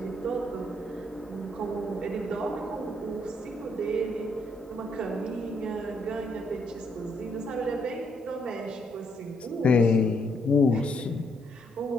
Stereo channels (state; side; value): normal; both; correlation 0.73